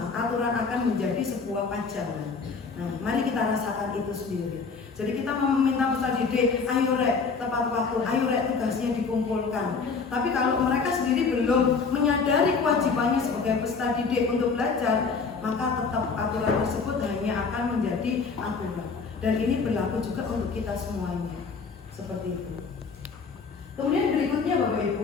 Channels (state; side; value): quieter; right; 4.9 dB